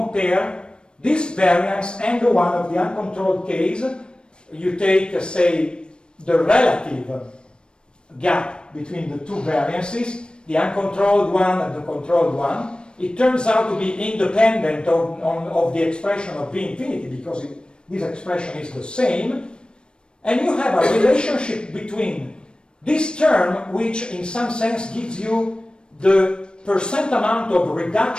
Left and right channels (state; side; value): late; right; 0.053 ms